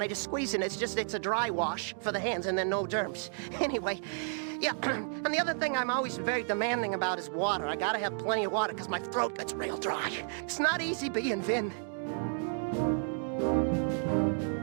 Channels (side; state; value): left; silent; 56 dB below the other